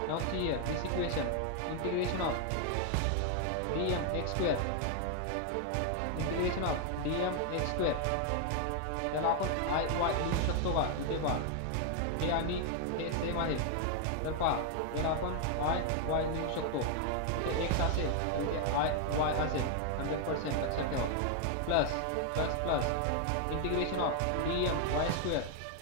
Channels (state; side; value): different; both; correlation 0.00